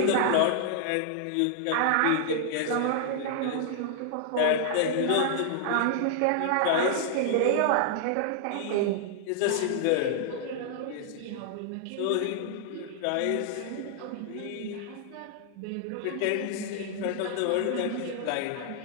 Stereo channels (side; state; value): both; different; correlation -0.01